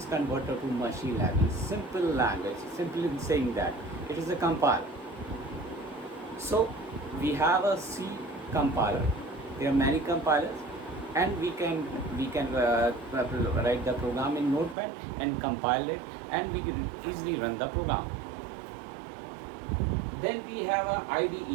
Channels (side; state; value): left; drops out; at 14.8 s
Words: converted to machine level, simple language. Simply saying that it is a compile. So we have a C compiler. There are many compilers, and we can write the program in notepad and compile it, and we can easily run the program. Then we have an